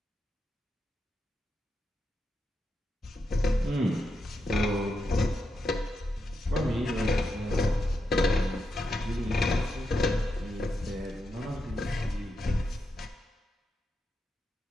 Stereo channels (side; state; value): both; normal; correlation 0.85